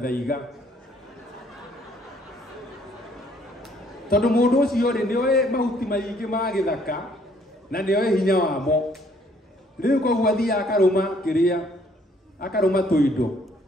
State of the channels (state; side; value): normal; both; correlation 0.64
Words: tondu mũndũ ũcio rĩ nĩ oĩ mahuti maingĩ ma gĩthaka na nĩ oĩ hinya wamo rĩu koguo athiaga akarũma tũindo